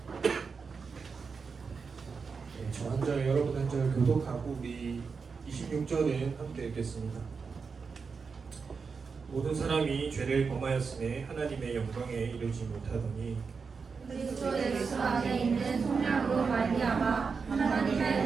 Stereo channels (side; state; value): left; quieter; 5.2 dB